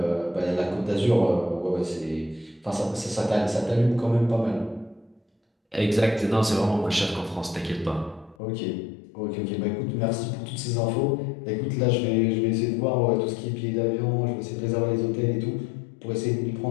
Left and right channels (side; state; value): right; drops out; at 8.3 s